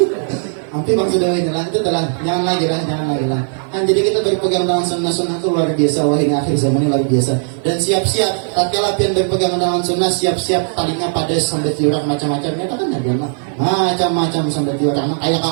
hampir bang sudah ini lah itu telah jangan lagi lah kan jadi kita berpegang dengan sunnah itu luar biasa wah hingga akhir zaman ini luar biasa dan siap-siap tatkala pian berpegang dengan sunnah siap-siap talinya pada sampai tiurak macam-macam ya kan ada mah macam-macam sampai tiurak kayak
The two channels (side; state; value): left; silent; 65 dB below the other